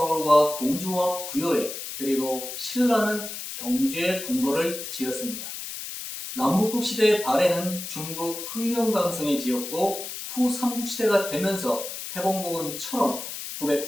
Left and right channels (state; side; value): noise; left; hiss, 8 dB below the sound